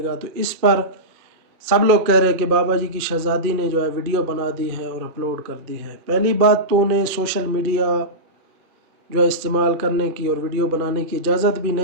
तो इस पर सब लोग कह रहे हैं कि बाबा जी की शहज़ादी ने जो है वीडियो बना दी है और अपलोड कर दी है। पहली बात तो उन्हें सोशल मीडिया जो है इस्तेमाल करने की और वीडियो बनाने की इजाज़त भी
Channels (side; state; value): left; late; 2.3 ms